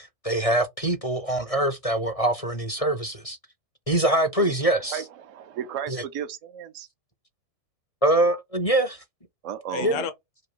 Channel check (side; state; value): right; late; 1.6 ms